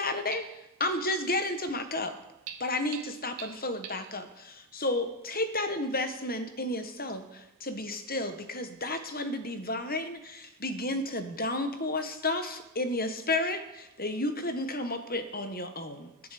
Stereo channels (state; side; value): normal; both; correlation 0.05